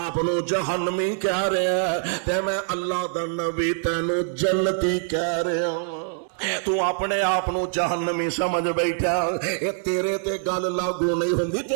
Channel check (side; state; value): left; silent; digital silence